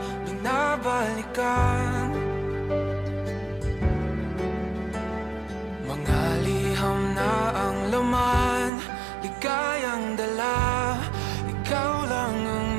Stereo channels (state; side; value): drops out; left; at 8.7 s